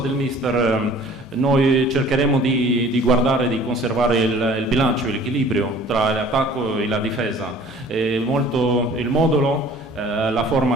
mister, noi cercheremo di guardare, di conservare il bilancio, l'equilibrio tra l'attacco e la difesa. Il modulo, la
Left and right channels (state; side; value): normal; both; correlation 0.50